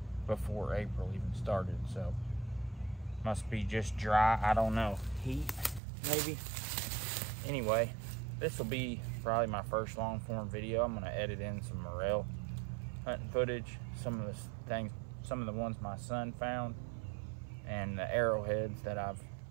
before April even started, so must be just dry, I don't know, heat maybe. Anyway, this will be probably my first long form video. I'm gonna edit in some morel hunting footage, some of the ones my son found, and the arrowheads that I've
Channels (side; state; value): left; drops out; at 5.8 s